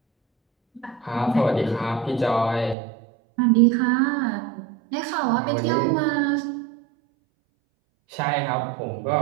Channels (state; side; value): drops out; left; at 2.8 s